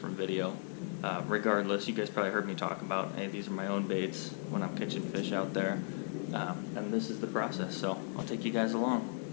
video. Regardless, you guys probably heard me talk about, hey, these are my own baits when I'm catching fish out there, and this is the process, so I'll take you guys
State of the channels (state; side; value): silent; right; 54 dB below the other